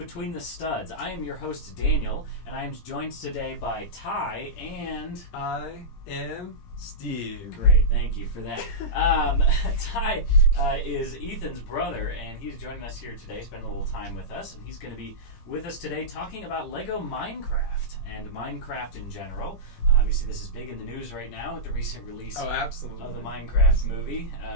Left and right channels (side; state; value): right; late; 17 ms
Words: the Studs. I am your host Daniel, and I am joined today by Ty and... I am Steve. Great, thank you for that. Ty is Ethan's brother, and he's joining us here today, spending a little time with us, and he's going to be with us today talking about LEGO Minercfta and Minecraft in general. Obviously, this is big in the news right now with the recent release of the Minecraft movie.